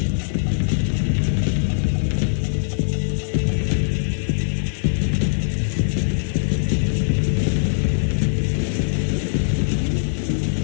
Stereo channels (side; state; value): right; silent; digital silence